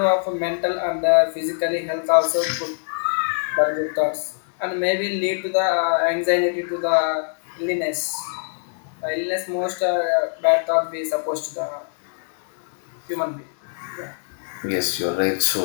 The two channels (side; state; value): right; silent; 63 dB below the other